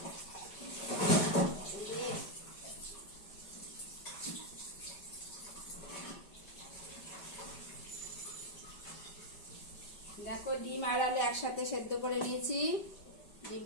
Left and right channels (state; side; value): late; right; 5.1 ms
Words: দেখো ডিম আর আলু একসাথে সেদ্ধ করে নিয়েছি।